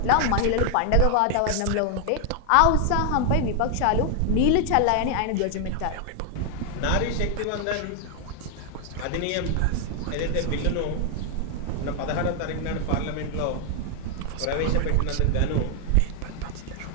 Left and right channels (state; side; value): different; both; correlation 0.00